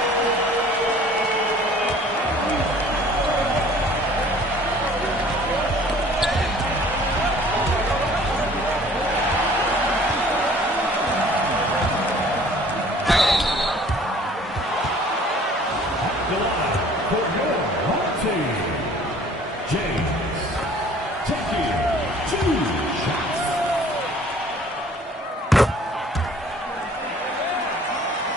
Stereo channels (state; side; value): normal; both; correlation 0.52